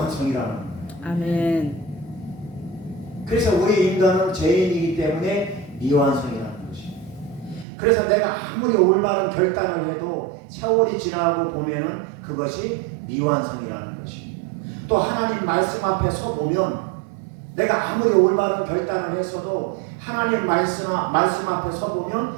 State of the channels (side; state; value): left; drops out; at 7.7 s